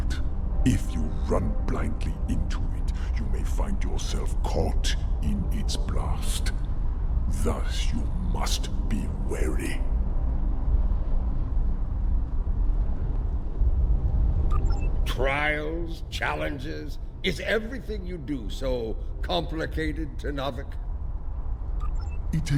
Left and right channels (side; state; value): both; identical; correlation 1.00